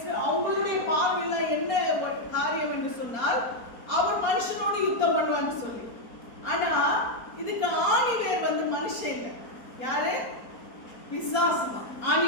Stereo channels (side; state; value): right; late; 4.3 ms